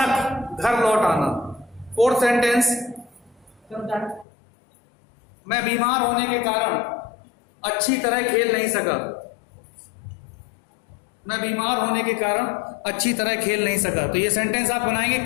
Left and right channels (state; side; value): drops out; right; at 4.2 s